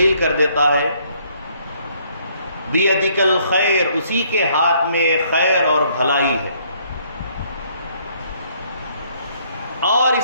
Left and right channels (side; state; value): both; inverted; correlation -0.66